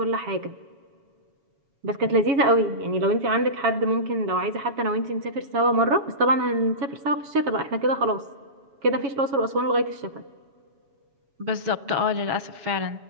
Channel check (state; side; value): late; left; 7.1 ms